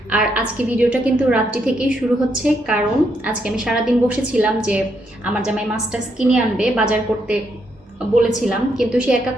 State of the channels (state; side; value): normal; both; correlation 0.77